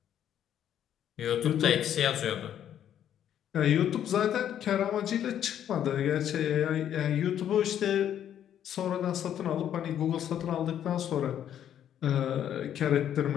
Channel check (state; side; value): quieter; right; 10.2 dB